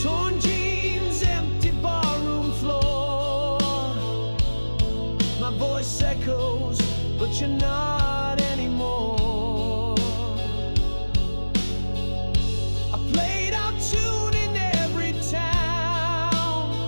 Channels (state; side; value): inverted; both; correlation -1.00